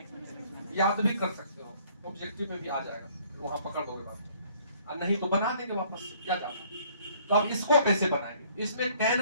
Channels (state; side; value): inverted; both; correlation -0.60